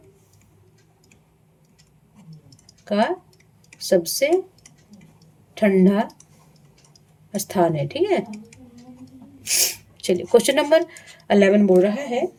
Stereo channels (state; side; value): identical; both; correlation 1.00